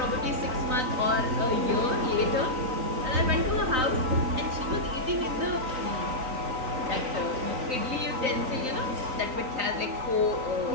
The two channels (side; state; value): left; late; 3.9 ms